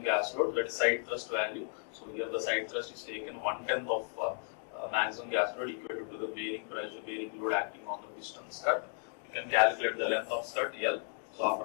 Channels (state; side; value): silent; right; 55 dB below the other